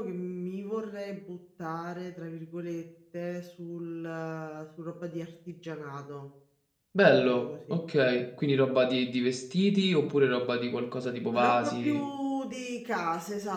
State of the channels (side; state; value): both; identical; correlation 1.00